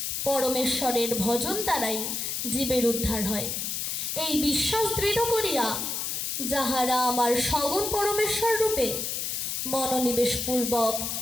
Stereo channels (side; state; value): left; noise; hiss, 2 dB below the sound